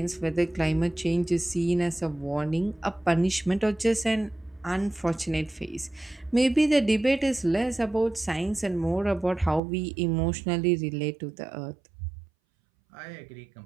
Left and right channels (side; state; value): left; drops out; at 9.6 s